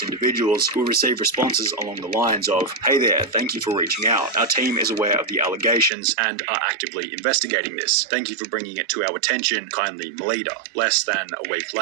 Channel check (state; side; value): drops out; left; at 5.9 s